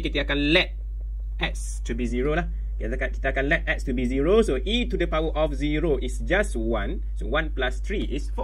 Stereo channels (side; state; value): both; identical; correlation 1.00